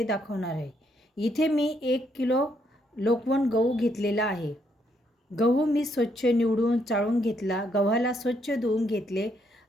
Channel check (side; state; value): both; normal; correlation 0.74